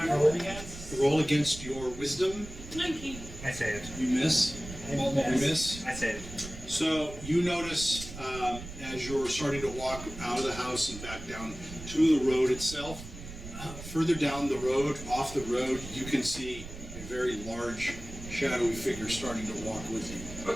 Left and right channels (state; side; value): noise; right; rumble, 12 dB below the sound